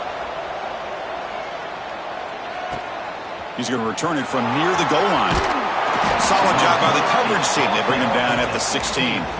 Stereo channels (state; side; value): identical; both; correlation 1.00